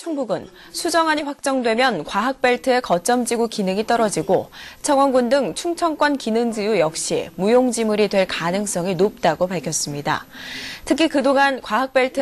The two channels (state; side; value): identical; both; correlation 1.00